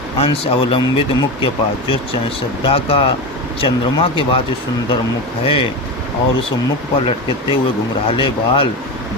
अंश अवलंबित मुख के पास, जो श्रद्धा का चंद्रमा के बाद जो सुंदर मुख है और उस मुख पर लटकते हुए घुंघराले बाल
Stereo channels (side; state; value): both; normal; correlation 0.21